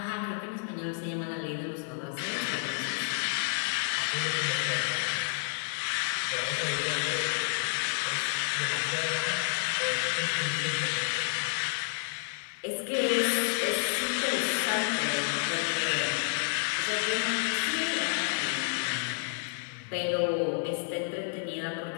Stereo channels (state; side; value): silent; right; 58 dB below the other